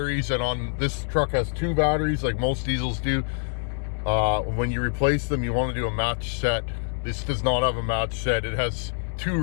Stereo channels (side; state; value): right; silent; digital silence